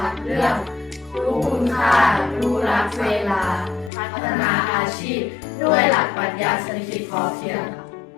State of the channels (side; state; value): right; drops out; at 3.9 s